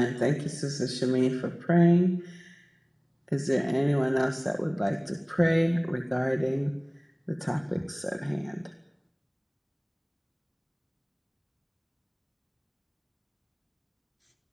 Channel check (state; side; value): identical; both; correlation 1.00